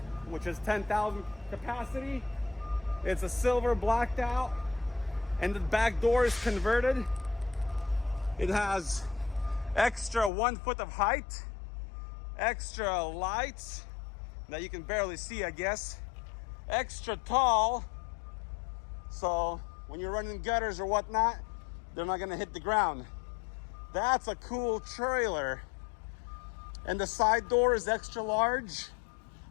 which is 10,000 capacity. It's a silver blacked out, and the back door is converted. It has extra 1 foot of height, extra lights that you can barely see, I guess. Extra tall, so when you're running gutters or whatnot, they're not gonna hit the ground. That's a cool trailer. And the side door is extra large,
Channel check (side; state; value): right; drops out; at 10.3 s